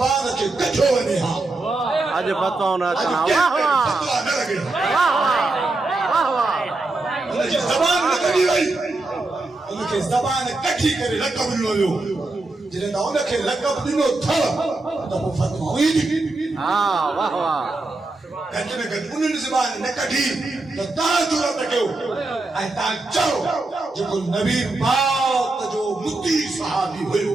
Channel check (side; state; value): left; quieter; 3.1 dB